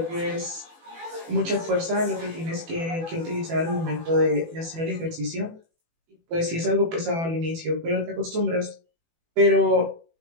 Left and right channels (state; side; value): late; left; 18 ms